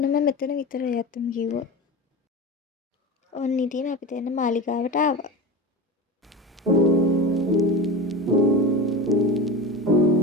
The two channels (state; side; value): normal; both; correlation 0.25